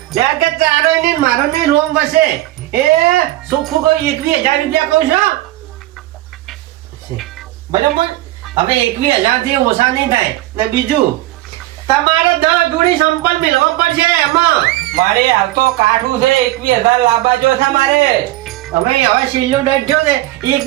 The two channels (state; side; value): quieter; left; 16.6 dB